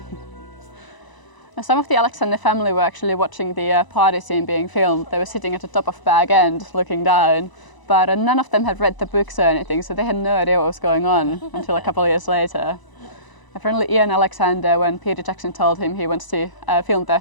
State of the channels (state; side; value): late; right; 1.0 ms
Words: Some of the Alexander family were actually watching the party scene being filmed. They were sitting at the top of Bag End looking down, but none of them had read the books or anything, so they had no idea what was going on until a couple of years later. Apparently Ian Alexander, when Peter Jackson told him he wants to film the